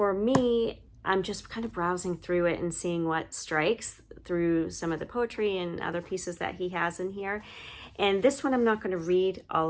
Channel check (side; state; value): both; identical; correlation 1.00